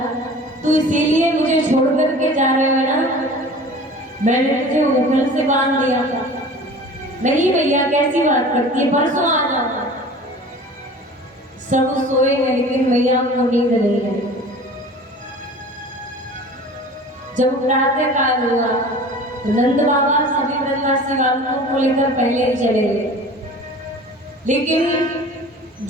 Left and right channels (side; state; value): both; normal; correlation 0.41